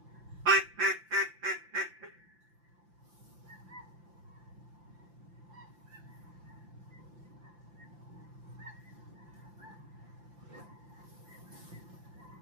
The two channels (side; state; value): left; late; 5.8 ms